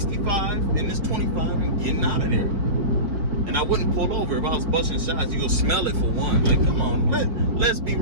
in this 25 and getting out of there. And I wouldn't pull over if I was busting shots. You'll smell it for one. Like, come on, let's be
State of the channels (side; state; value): left; late; 5.0 ms